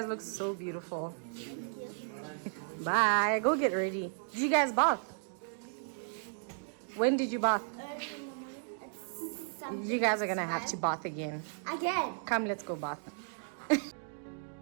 look so beautiful. Bye. Go get ready. Did you guys bath? When did you bath? You guys are gonna have to bath again. Again. Come, let's go bath.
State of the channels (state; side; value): silent; left; digital silence